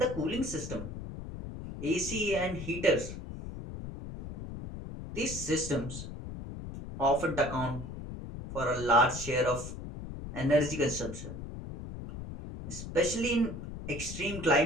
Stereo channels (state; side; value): noise; left; rumble, 9 dB below the sound